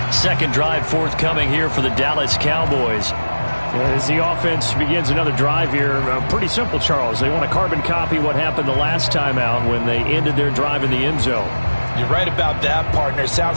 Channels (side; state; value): both; inverted; correlation -1.00